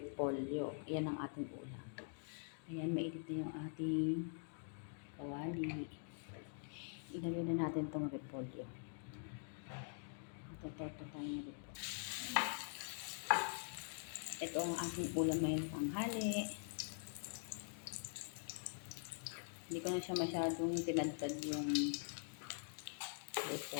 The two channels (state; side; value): silent; right; digital silence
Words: Yan ang ating ulam. Ayan, mainit na yung ating kawali. Ilagay na natin itong repolyo. Ito tayo ng repolyo. Ito ang ating ulam ngayong tanghali. Hindi ko na siya masyadong tinadtad yung